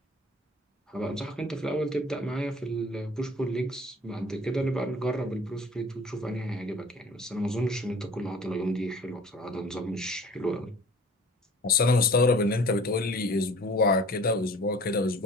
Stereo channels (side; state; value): both; normal; correlation 0.47